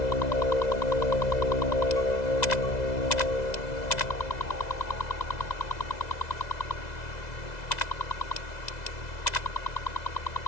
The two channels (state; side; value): late; right; 2.0 ms